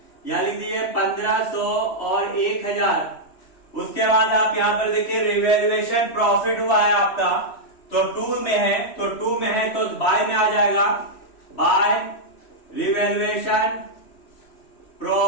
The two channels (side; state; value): right; late; 3.1 ms